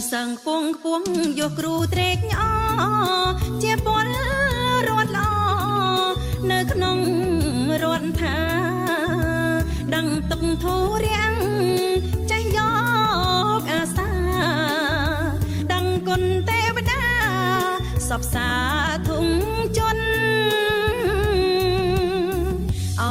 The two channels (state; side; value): identical; both; correlation 1.00